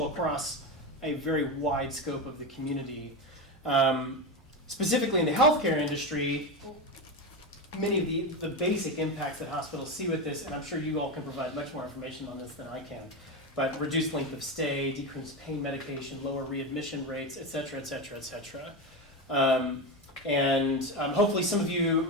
across a very wide scope of the community. Specifically in the healthcare industry, many of the basic impacts that hospitals see with this, and I'm sure you all can provide much more information on this than I can, but reduced length of stay, decreased pain medication, lower readmission rates, et cetera, et cetera, et cetera. And hopefully some of you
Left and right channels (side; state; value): both; normal; correlation 0.17